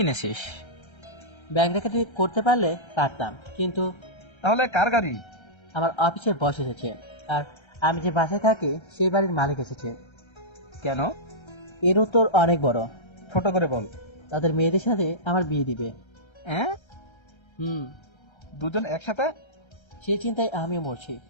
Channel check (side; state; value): right; late; 1.3 ms